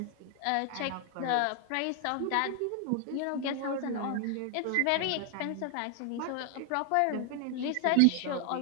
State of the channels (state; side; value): different; both; correlation 0.00